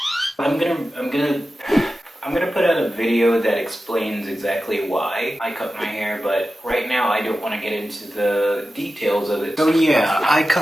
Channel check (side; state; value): both; normal; correlation 0.93